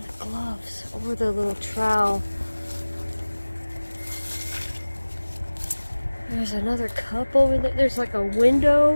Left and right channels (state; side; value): inverted; both; correlation -1.00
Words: the gloves or the little trowel. There's another cup over there. There's like a